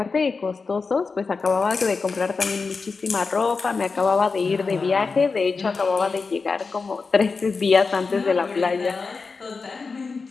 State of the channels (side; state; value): right; quieter; 4.5 dB